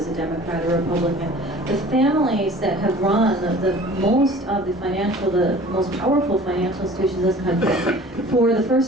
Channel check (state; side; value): normal; both; correlation 0.46